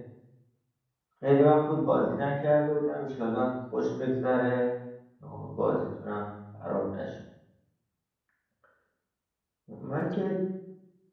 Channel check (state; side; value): identical; both; correlation 1.00